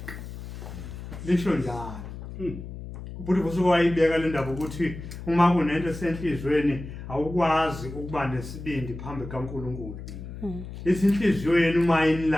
Lisho njalo. Ubuthi kusuke wayibeka le ndaba ukuthi uma kunento esenhlizweni awukwazi ukuba nesibindi phambi kaNkulunkulu. Isinhliziyo yenu uma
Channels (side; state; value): left; noise; hum, 11 dB below the sound